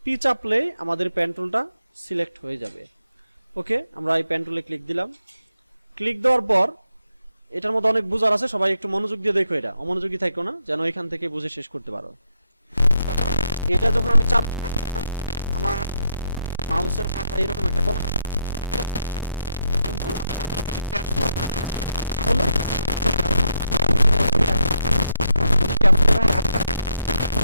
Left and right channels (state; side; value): inverted; both; correlation -0.80